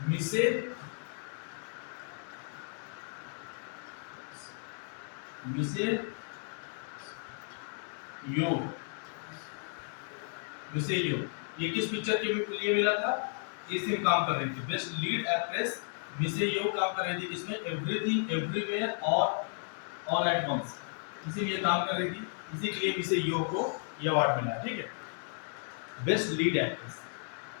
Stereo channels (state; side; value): silent; right; 55 dB below the other